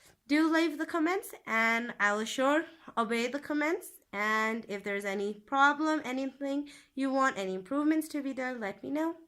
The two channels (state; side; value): identical; both; correlation 1.00